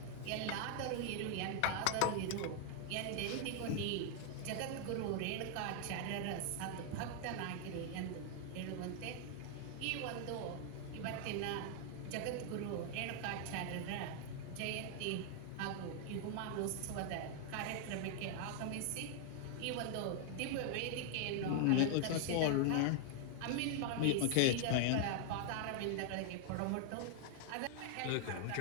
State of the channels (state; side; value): different; both; correlation 0.00